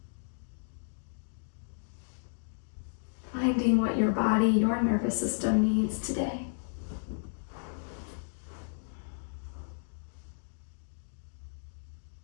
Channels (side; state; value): right; silent; digital silence